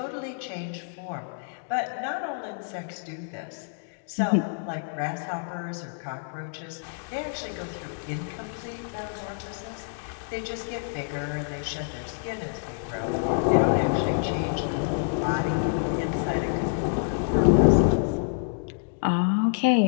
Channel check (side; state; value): right; silent; digital silence